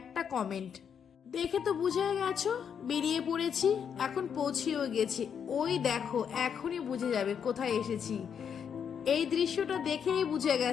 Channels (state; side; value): quieter; right; 7.6 dB